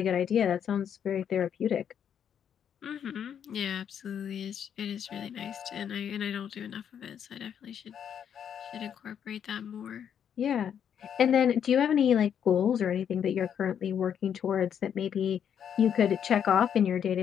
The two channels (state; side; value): quieter; right; 8.5 dB